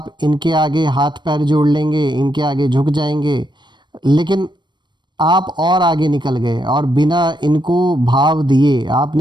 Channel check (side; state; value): left; late; 0.22 ms